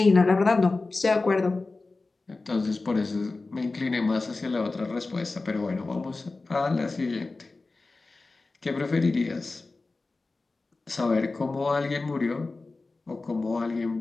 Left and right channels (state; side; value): quieter; right; 3.5 dB